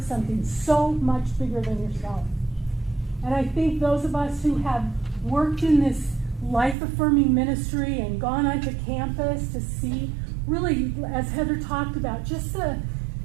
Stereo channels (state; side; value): drops out; left; at 6.8 s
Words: something so much bigger than yourself. And I think those of us who have worked in this life-affirming ministry and gone onto campus to see, really, as Heather talked about, just the